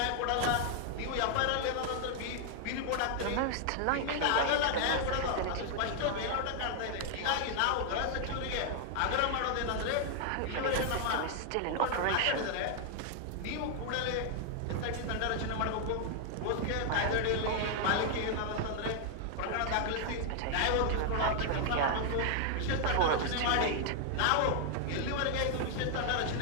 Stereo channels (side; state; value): both; different; correlation 0.00